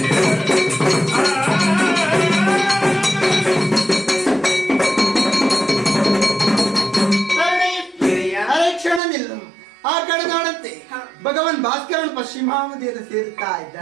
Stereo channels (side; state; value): left; drops out; at 9.0 s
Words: ಭಗವಾನ್ ಭಾಸ್ಕರನ್ ಪಶ್ಚಿಮಾವಧಿಯನ್ನು ಸೇರುತ್ತಾ